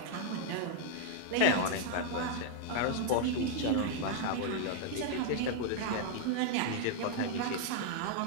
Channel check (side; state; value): both; different; correlation 0.00